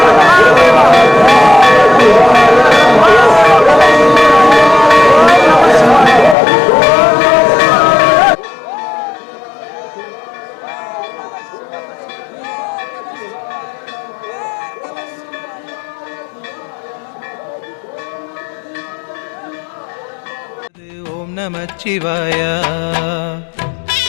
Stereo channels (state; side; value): drops out; right; at 6.4 s